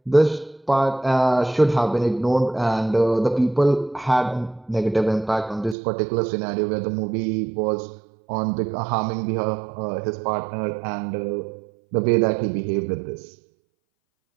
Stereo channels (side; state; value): left; drops out; at 5.8 s